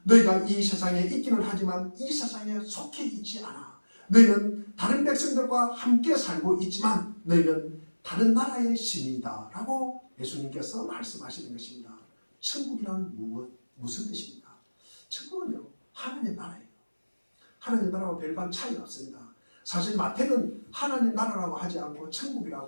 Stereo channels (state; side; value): inverted; both; correlation -1.00